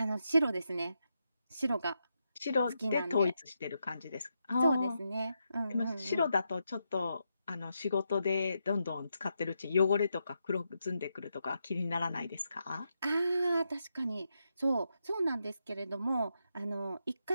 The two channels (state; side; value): inverted; both; correlation -0.84